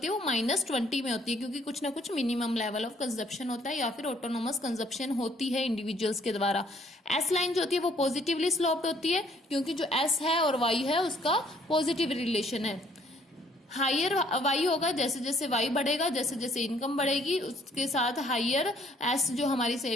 है वो -20 में होती है, क्योंकि कुछ ना कुछ मिनिमम लेवल ऑफ कंजप्शन होता है या फिर ऑटोनोमस कंजप्शन होती है इंडिविजुअल्स के द्वारा। एस लाइन जो होती है वो पॉजिटिवली स्लोप्ड होती है, क्योंकि जो एस है और y है उसका पॉजिटिव रिलेशन है। हायर वाई होगा, जैसे जैसे वाई बढ़ेगा, जैसे जैसे इनकम बढ़ेगी, उसके साथ हायर एस जो हमारी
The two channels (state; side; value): normal; both; correlation 0.63